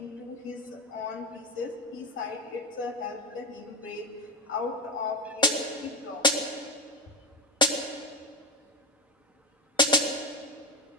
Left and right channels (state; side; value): normal; both; correlation 0.16